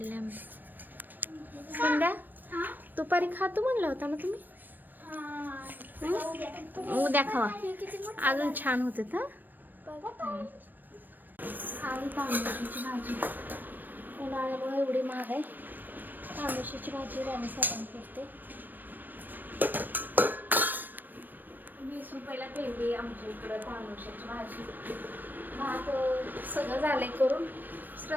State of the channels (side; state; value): left; late; 0.091 ms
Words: आंबे संध्या दुपारी खातो म्हणला होता ना तुम्ही उद्या खावा अजून छान होते खाली तांदूळाची भाजी उन्हाळ्यामुळे एवढी महाग आहे तांदूळाची भाजी राणी साबण करते 20 रुपयाला पेंडी आमच्या इकडं तांदूळाची भाजी भात सगळं झालंय करून